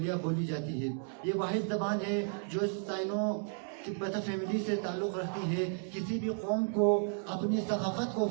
بولی جاتی ہے. یہ واحد زبان ہے جو سائنو تبت فیملی سے تعلق رکھتی ہے. کسی بھی قوم کو اپنی ثقافت کو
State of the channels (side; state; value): left; silent; 55 dB below the other